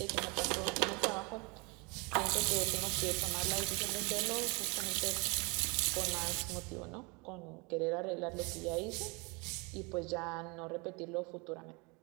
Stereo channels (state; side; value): quieter; left; 30.0 dB